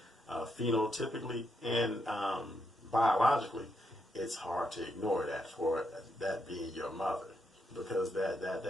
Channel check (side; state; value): both; normal; correlation 0.80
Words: phenotypically and biologically, it's hard to ignore that, for that being your mother, because